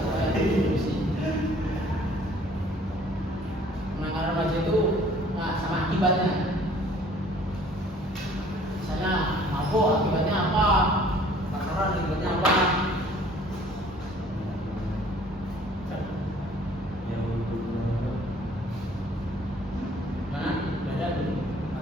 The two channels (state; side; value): normal; both; correlation 0.55